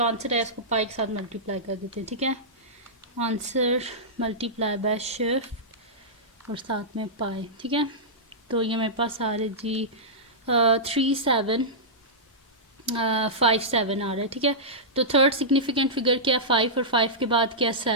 आंसर है इसको पाई के साथ मल्टीप्लाई कर देते हैं। ठीक है, आंसर मल्टीप्लाई बाय शिफ्ट और साथ में पाए। ठीक है, तो ये मेरे पास आ रहे जी 3757 आ रहा है। ठीक है, तो थर्ड सिग्निफिकेंट फिगर क्या है 5, और 5 के बाद क्या है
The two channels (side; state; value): both; normal; correlation -0.14